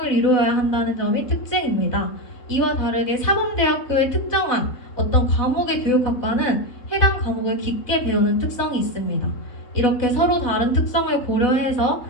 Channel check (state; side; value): late; right; 4.0 ms